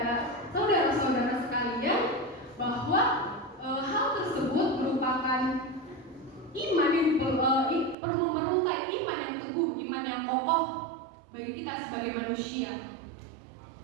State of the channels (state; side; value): drops out; left; at 8.0 s